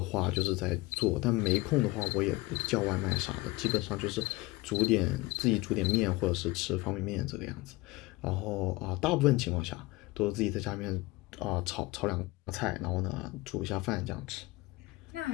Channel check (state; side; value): quieter; right; 20.9 dB